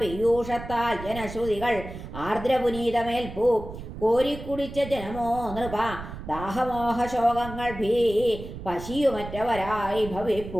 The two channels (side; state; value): right; noise; rumble, 11 dB below the sound